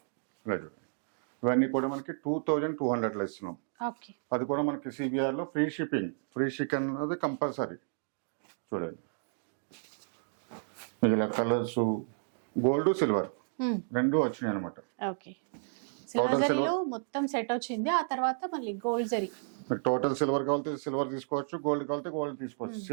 ఇవన్నీ కూడా మనకి 2200 లో ఇస్తున్నాం. అది కూడా మనకి సిబిఆర్ లో ఫ్రీ షిప్పింగ్. ఫ్రీ షిప్పింగ్ అనేది కంపల్సరీ. చూడండి ఇలా కలర్స్ గోల్డ్ సిల్వర్ రెండు వచ్చినాయి అనమాట. మొత్తం సెట్ వచ్చింది. ఆ తర్వాత మళ్ళీ గోల్డ్ జరీ. టోటల్ సిల్వర్ కావాలంటే సిల్వర్ తీసుకోవచ్చు, గోల్డ్ కావాలంటే గోల్డ్ తీసుకోవచ్చు.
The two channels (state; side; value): silent; left; digital silence